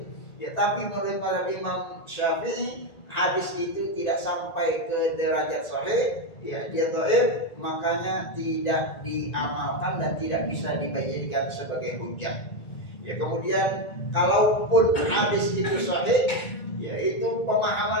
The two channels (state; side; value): late; right; 1.9 ms